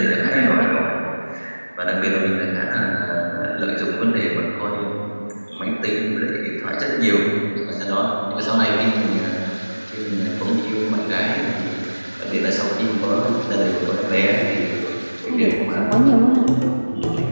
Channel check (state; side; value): inverted; both; correlation -1.00